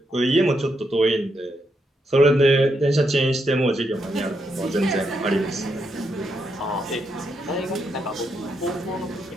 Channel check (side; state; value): both; normal; correlation 0.80